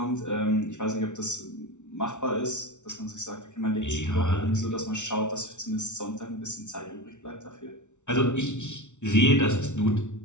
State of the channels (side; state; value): right; late; 0.84 ms